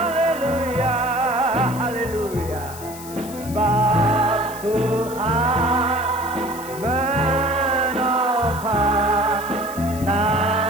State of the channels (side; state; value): left; noise; hiss, 15 dB below the sound